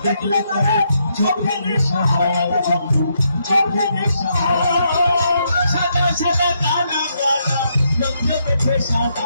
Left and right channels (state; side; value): inverted; both; correlation -0.77